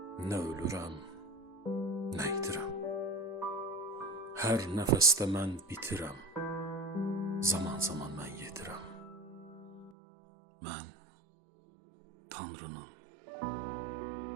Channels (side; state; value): left; drops out; at 9.9 s